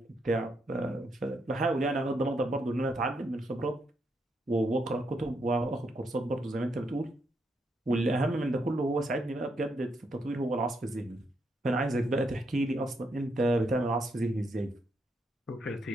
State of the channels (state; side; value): normal; both; correlation 0.78